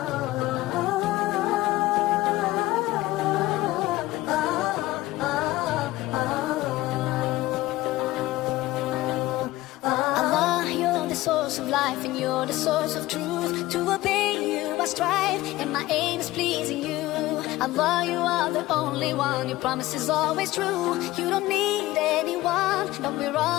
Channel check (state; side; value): quieter; right; 17.4 dB